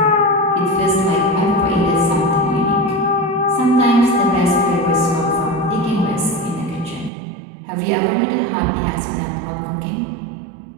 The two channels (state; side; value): drops out; left; at 7.1 s